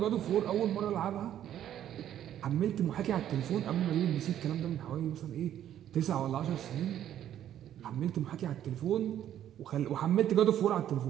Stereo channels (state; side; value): quieter; left; 11.0 dB